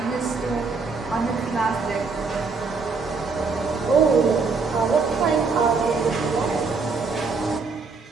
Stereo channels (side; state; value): left; quieter; 4.5 dB